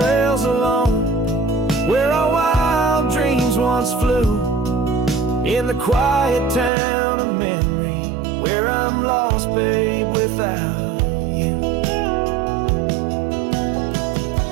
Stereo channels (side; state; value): left; drops out; at 6.7 s